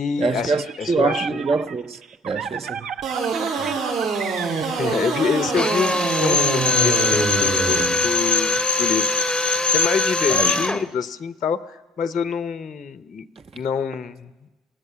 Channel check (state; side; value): normal; both; correlation 0.50